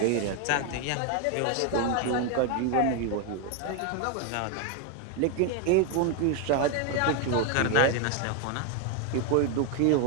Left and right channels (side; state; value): both; different; correlation 0.01